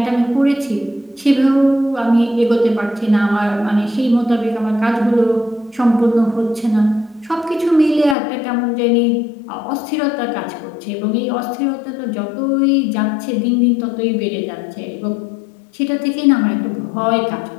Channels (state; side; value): drops out; right; at 8.2 s